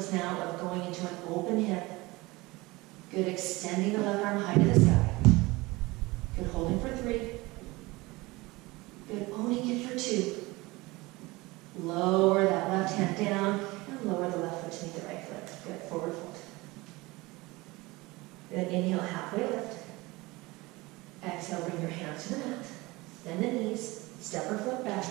now of going into an open hip. Good, extending the left arm high to the sky. Good, holding for 3. Good, owning it for 2. Lower that left hand down and lower the left foot to meet the right foot. Good, forward fold. Good, inhale, halfway lift. Exhale, bring your hands to the mat. Bend the knees, step or flip back,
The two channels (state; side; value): quieter; left; 22.1 dB